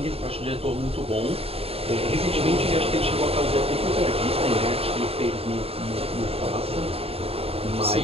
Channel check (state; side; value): late; left; 0.28 ms